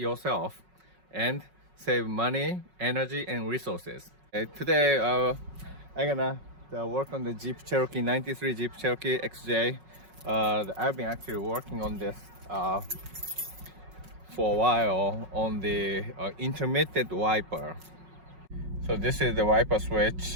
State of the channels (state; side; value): late; left; 5.4 ms